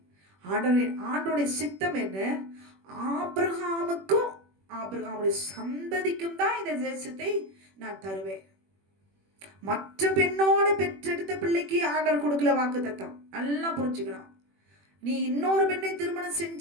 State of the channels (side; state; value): left; late; 21 ms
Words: ஆண்டவருடைய சித்தம் என்ன? ஆபிரகாமுக்கும் ஆபிரகாமுடைய சந்ததிக்கும் தான் இந்த தேசத்தை நான் தருவேன். மற்ற பெண்ணோட பெற்றெடுத்த பிள்ளைக்கு ஆண்டவர் கொடுக்கல வாக்குத்தத்தம். நல்லா புரிஞ்சுக்கணும். நீ இன்னொரு பெண்ணை திருமணம்